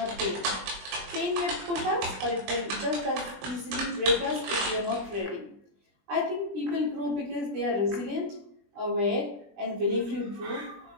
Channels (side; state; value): left; late; 20 ms